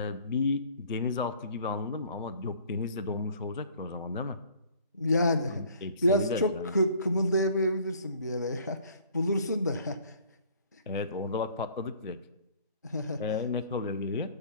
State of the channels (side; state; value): both; inverted; correlation -0.54